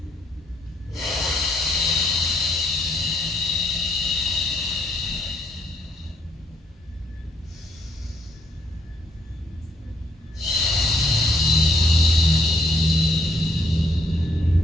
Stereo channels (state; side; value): normal; both; correlation 0.72